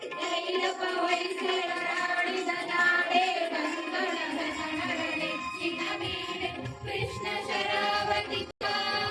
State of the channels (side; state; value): both; identical; correlation 1.00